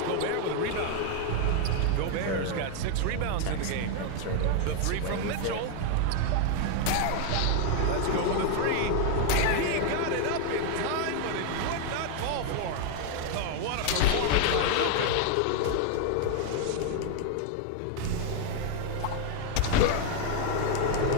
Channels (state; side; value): different; both; correlation 0.00